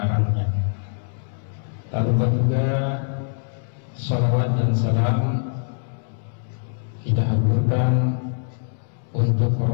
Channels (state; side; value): silent; right; 63 dB below the other